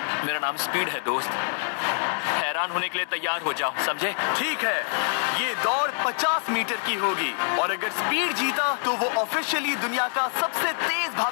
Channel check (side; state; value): right; silent; digital silence